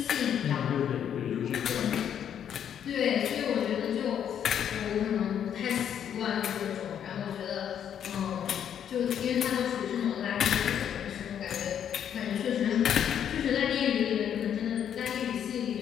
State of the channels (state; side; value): quieter; right; 9.1 dB